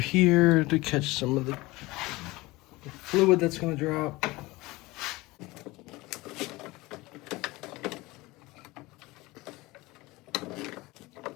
to catch some of the fluid that's gonna drop.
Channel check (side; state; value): right; quieter; 21.2 dB